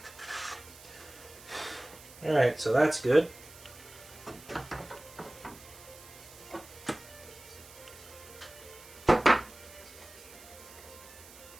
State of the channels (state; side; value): noise; right; hiss, 19 dB below the sound